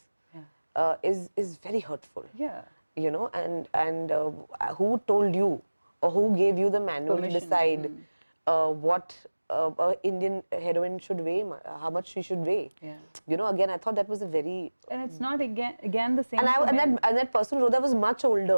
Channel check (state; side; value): inverted; both; correlation -1.00